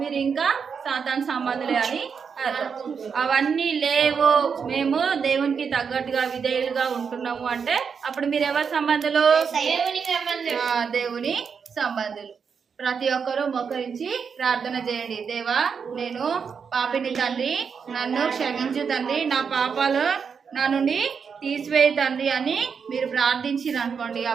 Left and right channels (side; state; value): left; quieter; 6.3 dB